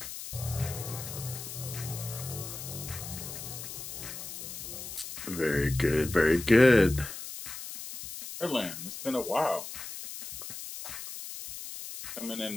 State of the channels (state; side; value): noise; left; hiss, 9 dB below the sound